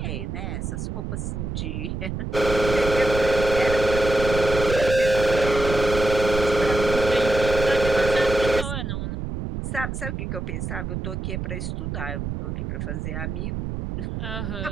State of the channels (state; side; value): noise; right; rumble, 5 dB below the sound